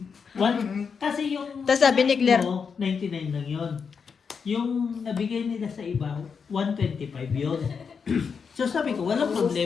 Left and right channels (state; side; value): quieter; right; 6.0 dB